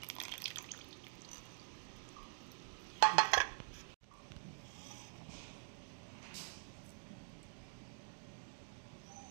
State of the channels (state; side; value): silent; left; digital silence